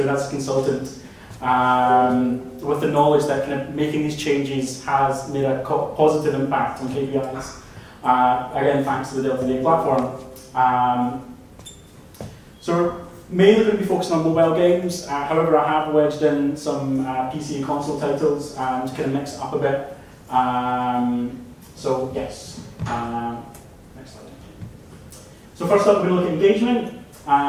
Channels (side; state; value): both; identical; correlation 1.00